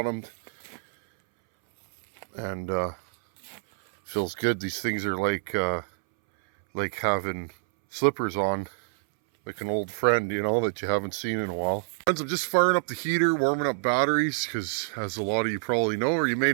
and feels good. These things are like having slippers on, like an old friend, you know, that you haven't seen in a while. Friends, I'm just firing up the heater, warming up batteries, because as a lot of you probably know, or you may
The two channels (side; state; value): left; silent; 60 dB below the other